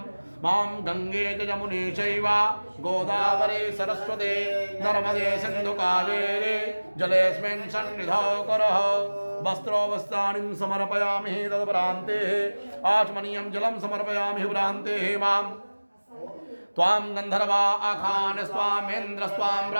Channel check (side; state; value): both; inverted; correlation -1.00